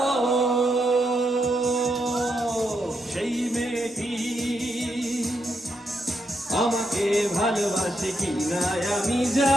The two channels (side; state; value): both; normal; correlation 0.81